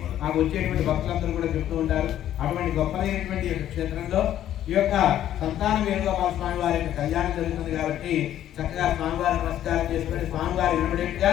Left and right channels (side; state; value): right; quieter; 11.7 dB